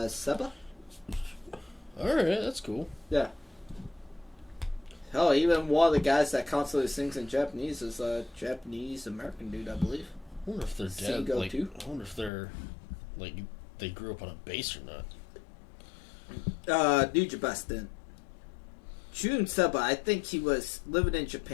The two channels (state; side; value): drops out; right; at 12.3 s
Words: Seba? Alright, that's cool. Yeah. Hell, even one of the guys that constantly sings in Japanese is a Japanese-American dude, I believe. I wonder if they're dead. Seago Like, too? I wonder if they're, like, they grew up on a base or not. Nujabes didn't. June Seba, I think he was living in